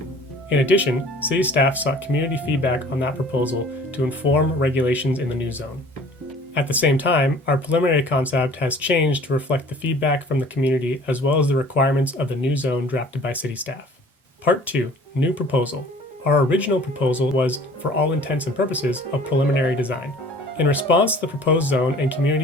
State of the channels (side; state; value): both; normal; correlation 0.49